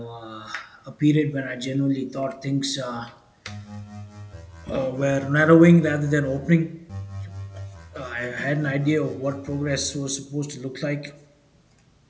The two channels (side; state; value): both; identical; correlation 1.00